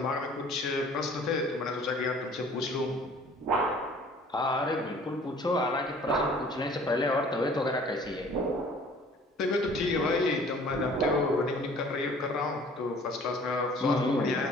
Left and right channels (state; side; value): normal; both; correlation 0.51